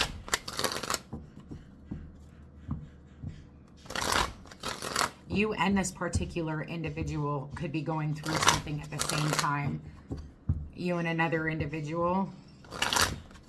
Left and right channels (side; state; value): both; identical; correlation 1.00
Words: You and this particular individual could be going through something at the same time. You and another individual.